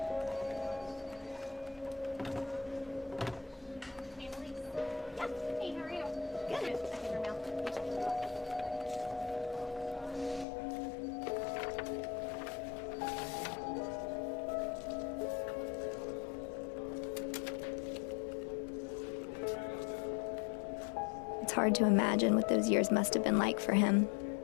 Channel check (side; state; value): right; drops out; at 10.5 s